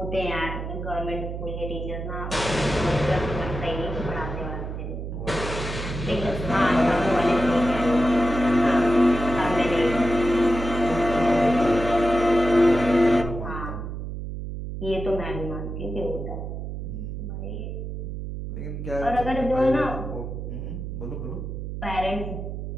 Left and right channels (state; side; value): noise; right; hum, 6 dB below the sound